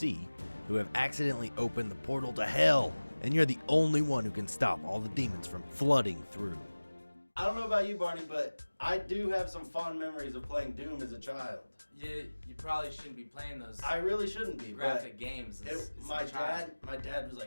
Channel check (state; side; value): inverted; both; correlation -1.00